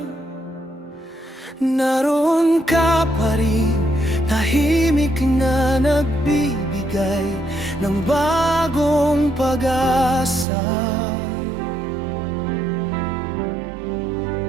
naroon ka pa rin, tahimik na nagbibigay ng bagong pag-asa.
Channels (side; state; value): left; drops out; at 10.5 s